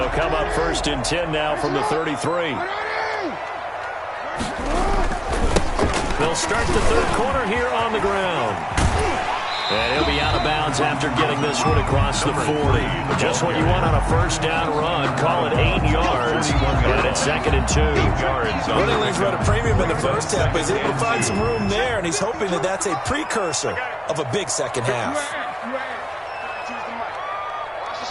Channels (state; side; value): identical; both; correlation 1.00